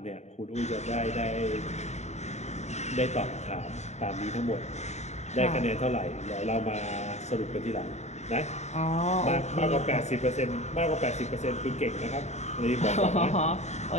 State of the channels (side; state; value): right; late; 0.33 ms